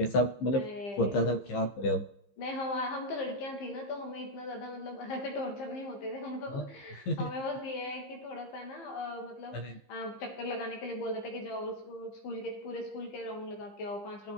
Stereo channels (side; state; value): right; late; 15 ms